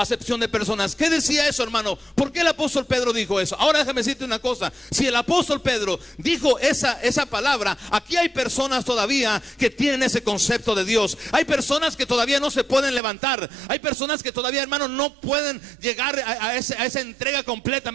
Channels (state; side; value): drops out; left; at 13.0 s